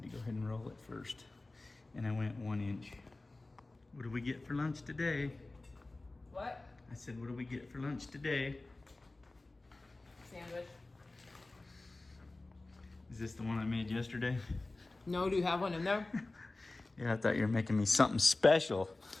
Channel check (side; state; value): right; quieter; 3.1 dB